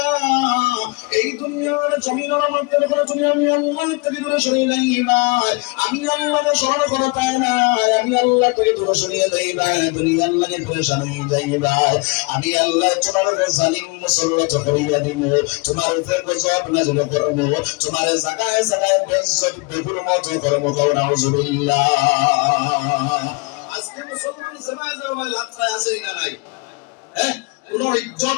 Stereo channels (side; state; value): right; quieter; 28.4 dB